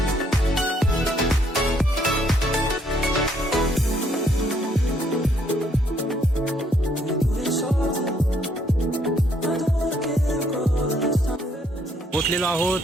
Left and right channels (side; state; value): both; normal; correlation 0.69